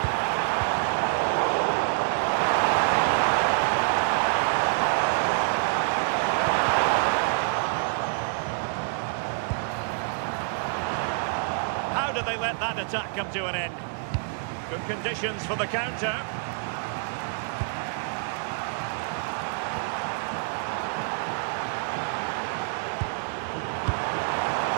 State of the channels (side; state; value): left; silent; digital silence